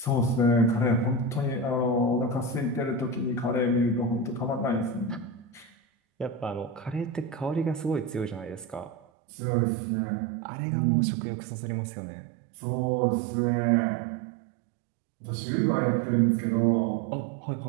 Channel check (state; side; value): drops out; left; at 9.0 s